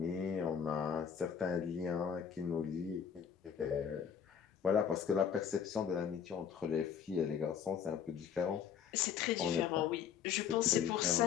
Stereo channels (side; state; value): right; quieter; 7.8 dB